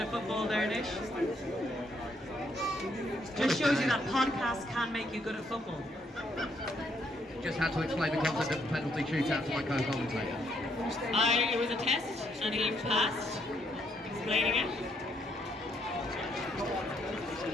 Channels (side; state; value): both; normal; correlation 0.72